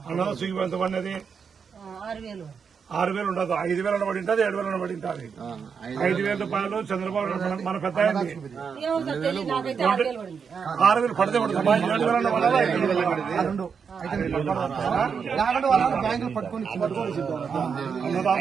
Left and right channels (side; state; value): left; quieter; 6.3 dB